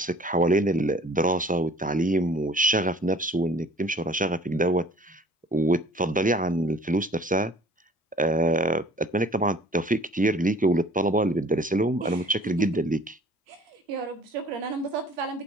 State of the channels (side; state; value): both; normal; correlation 0.51